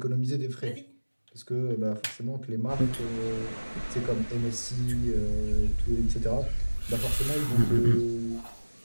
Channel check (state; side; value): inverted; both; correlation -1.00